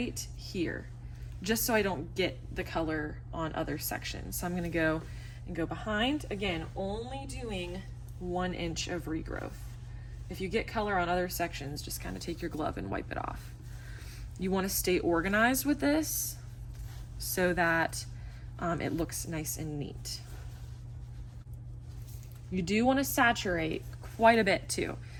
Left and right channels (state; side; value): identical; both; correlation 1.00